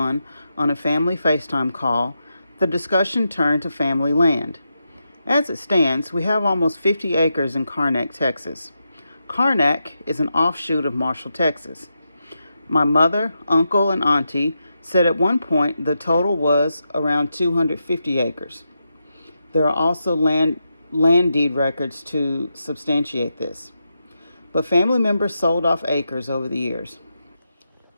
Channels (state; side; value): inverted; both; correlation -0.86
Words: on a family FaceTime call, the discussion turned to family land. As it stands, we have almost 50 acres in Karnack, Texas. Karnack is an offshoot of Marshall, Texas. My mother, uncle, and auntie said at one point the total was around 250 acres. There are also land deed records to substantiate this. But family members sold off acres over the years.